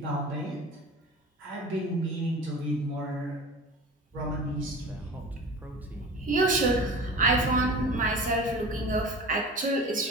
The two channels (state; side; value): normal; both; correlation 0.36